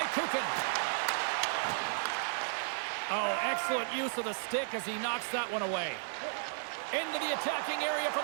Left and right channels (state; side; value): silent; left; digital silence